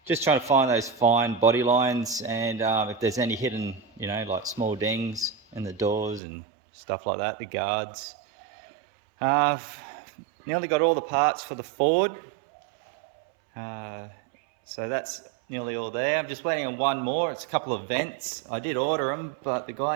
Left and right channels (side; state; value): left; drops out; at 6.2 s